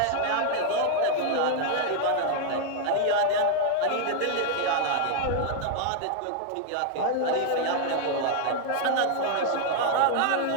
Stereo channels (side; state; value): both; different; correlation 0.00